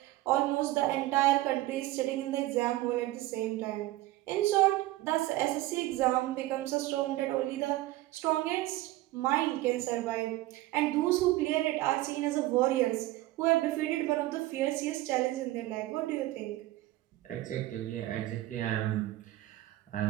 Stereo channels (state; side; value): quieter; left; 17.0 dB